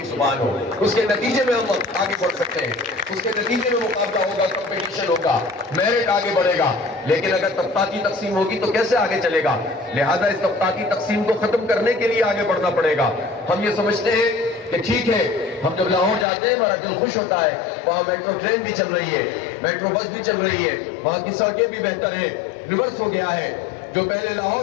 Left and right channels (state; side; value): drops out; right; at 16.2 s